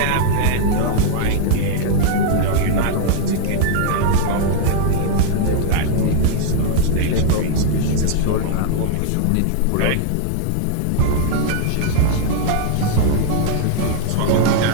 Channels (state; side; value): different; both; correlation -0.01